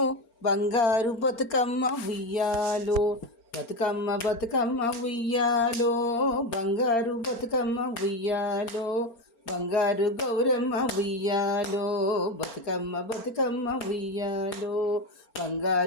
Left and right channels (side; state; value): right; late; 4.4 ms